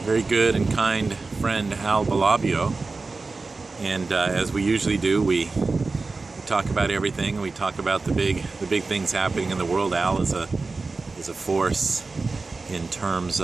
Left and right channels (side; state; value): left; quieter; 3.9 dB